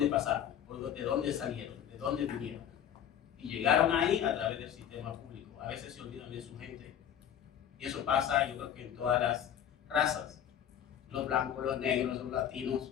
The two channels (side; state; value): right; quieter; 9.7 dB